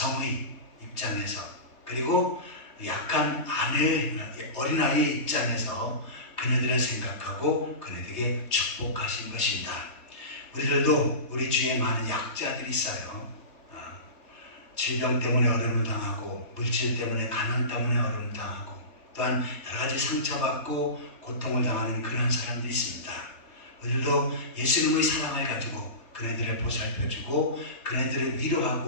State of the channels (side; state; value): right; late; 3.8 ms